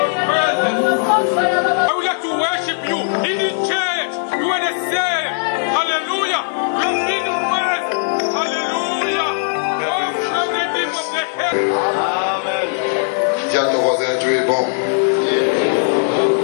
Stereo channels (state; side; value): silent; right; digital silence